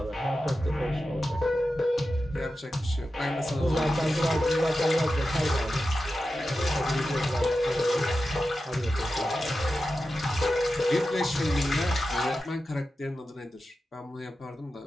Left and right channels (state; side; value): normal; both; correlation 0.92